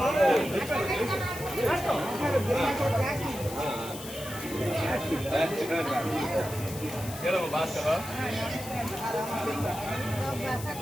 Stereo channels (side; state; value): left; noise; hiss, 12 dB below the sound